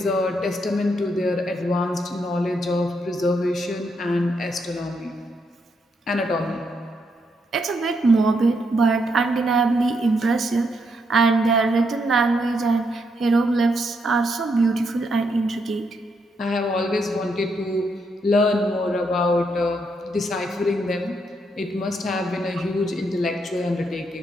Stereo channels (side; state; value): both; normal; correlation 0.78